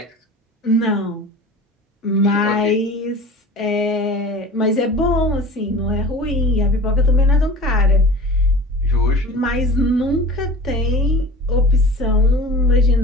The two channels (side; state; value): both; normal; correlation 0.39